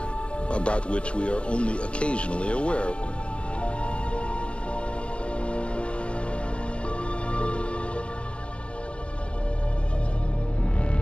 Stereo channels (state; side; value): late; right; 0.058 ms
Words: about which we are only occasionally aware.